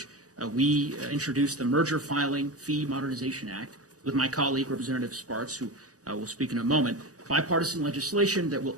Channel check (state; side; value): late; left; 0.66 ms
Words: we introduced the Merger Filing Fee Modernization Act with my colleague, Representative Sparks, who will speak in a moment. Bipartisan legislation that will